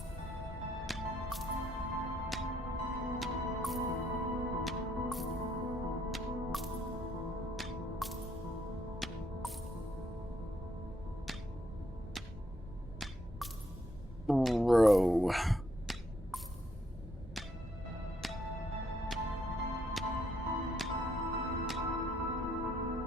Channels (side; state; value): both; normal; correlation 0.73